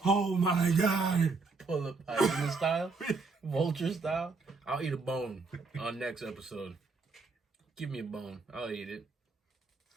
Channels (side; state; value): left; quieter; 4.1 dB